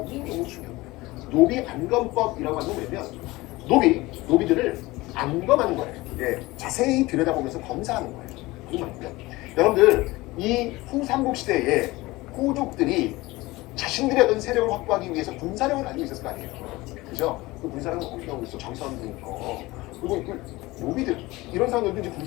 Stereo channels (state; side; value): quieter; right; 20.4 dB